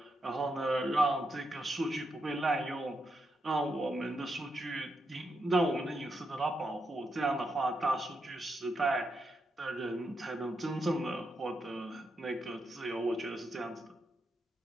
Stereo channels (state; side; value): normal; both; correlation 0.83